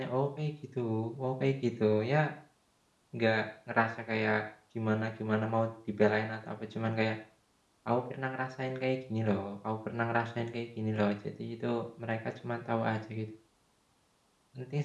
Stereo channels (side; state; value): both; identical; correlation 1.00